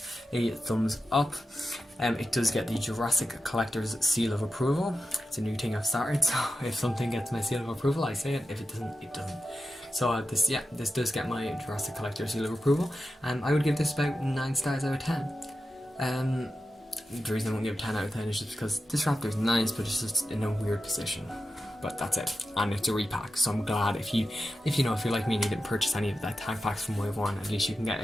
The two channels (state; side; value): normal; both; correlation 0.91